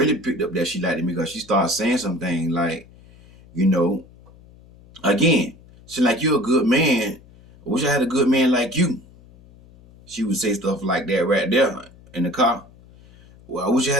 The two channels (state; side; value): noise; left; hum, 25 dB below the sound